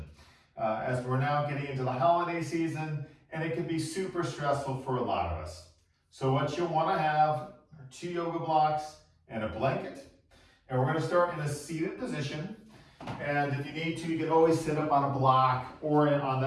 As we're now getting into the holiday season, and it can be super stressful for a lot of us. So what you'll want to have are 2 yoga blocks and a blanket. And we're going to start in a seated position. And if you need to, you can always sit up on a block or on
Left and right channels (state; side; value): identical; both; correlation 1.00